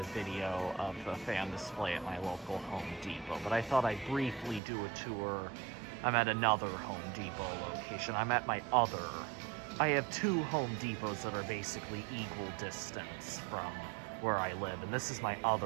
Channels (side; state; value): left; drops out; at 4.6 s